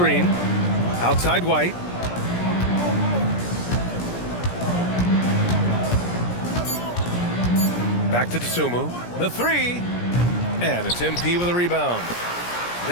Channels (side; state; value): right; late; 17 ms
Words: Outside White. Back to Dosunmu. The three. And it's MP with a rebound.